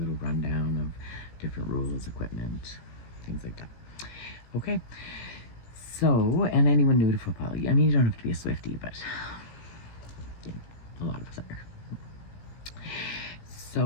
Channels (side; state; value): right; late; 17 ms